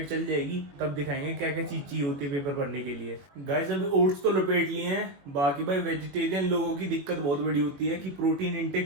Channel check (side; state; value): left; late; 21 ms